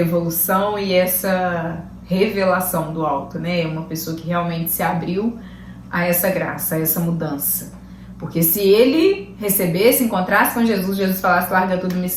e essa revelação do alto, né? Uma pessoa que realmente se abriu a essa graça, a essa mudança. Porque se ele recebesse, encontrasse com Jesus, Jesus falasse, larga tudo, me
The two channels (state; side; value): identical; both; correlation 1.00